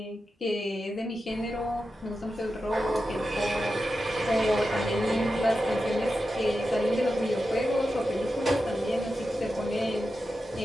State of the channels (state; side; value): normal; both; correlation 0.90